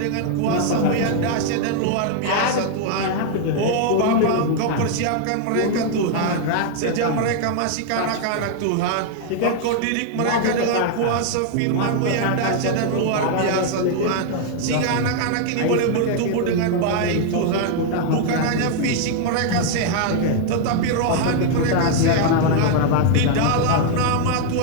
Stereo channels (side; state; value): both; different; correlation 0.00